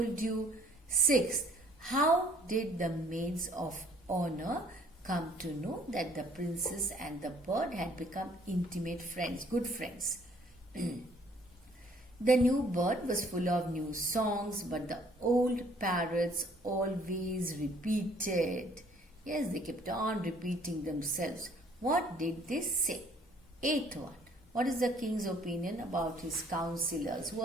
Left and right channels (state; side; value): normal; both; correlation 0.60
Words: you. Sixth, how did the maids of honor come to know that the princess and the bird had become intimate friends, good friends? The new bird was full of new songs, but the old parrots always repeated. Yes, they kept on repeating themselves. What did they say? Eighth one. What is the king's opinion about his counselors? Who